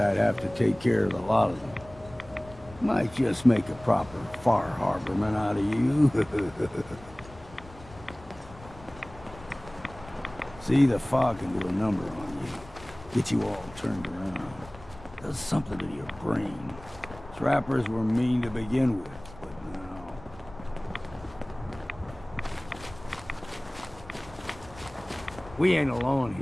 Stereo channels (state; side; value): noise; left; rumble, 19 dB below the sound